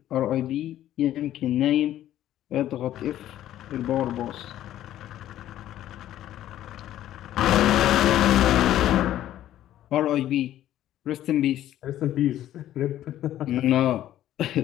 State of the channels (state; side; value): quieter; right; 12.7 dB